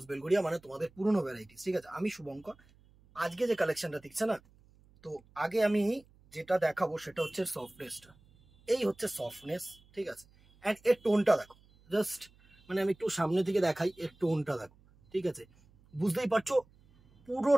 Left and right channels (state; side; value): noise; right; hum, 29 dB below the sound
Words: Belgharia, মানে তোমাদের পুরনো ভ্যারাইটিস। ঠিক আছে, আমি শুভঙ্কর। আজকে যে কালেকশনটা দেখছে না, তো আগে আমি যেটা দেখাবো সেটা হচ্ছে সফটনেসটা। এই হচ্ছে সফটনেস, ঠিক আছে। অ্যান্ড এর টোনটা দেখো, জাস্ট মানে আমি একটু সামনে থেকে দেখাই, এর টোনটা দেখো, ঠিক আছে। বুঝতেই পারছো